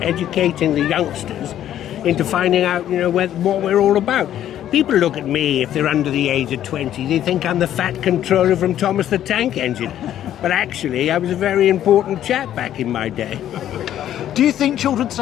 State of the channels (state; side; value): quieter; right; 11.4 dB